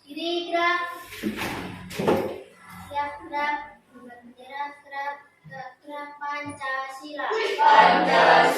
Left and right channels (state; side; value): identical; both; correlation 1.00